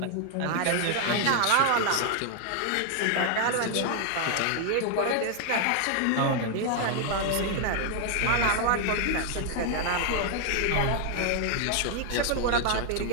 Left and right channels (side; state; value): both; different; correlation 0.00